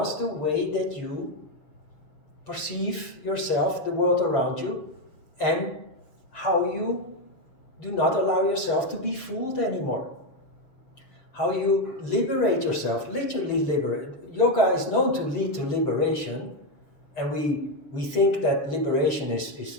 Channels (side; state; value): right; late; 6.9 ms